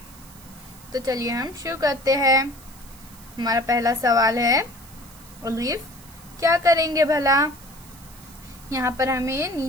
तो चलिए हम शुरू करते हैं। हमारा पहला सवाल है, अलीफ क्या करेंगे भला। यहाँ पर हमें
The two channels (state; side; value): noise; right; hiss, 21 dB below the sound